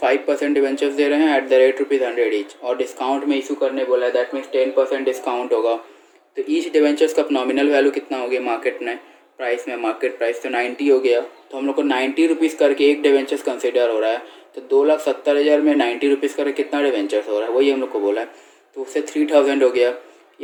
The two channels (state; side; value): identical; both; correlation 1.00